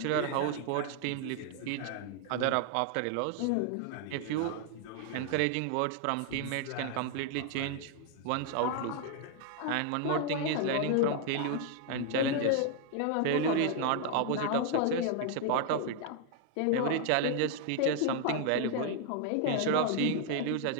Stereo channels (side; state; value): both; different; correlation 0.00